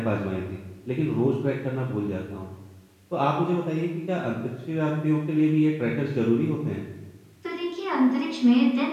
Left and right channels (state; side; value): identical; both; correlation 1.00